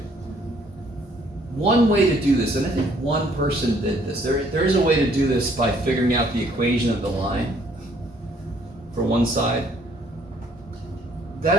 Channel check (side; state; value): both; normal; correlation 0.63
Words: One way to do this, and I think one person did this, there is a way to do this by figuring out the equation of the line for one side.